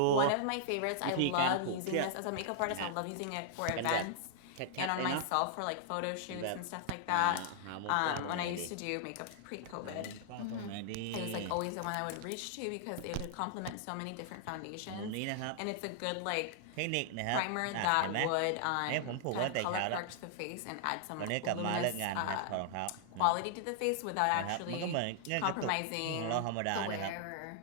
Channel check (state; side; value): different; both; correlation -0.01